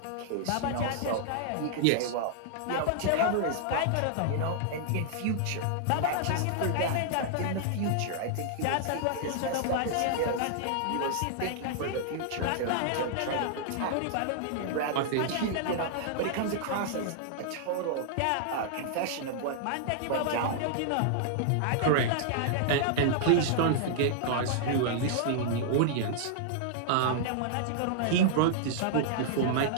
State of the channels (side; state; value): both; different; correlation -0.01